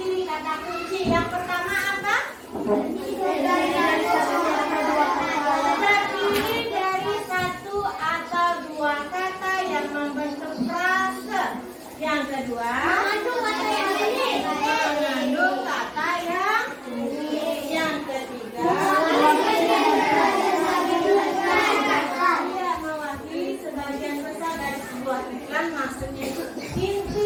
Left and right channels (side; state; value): both; identical; correlation 1.00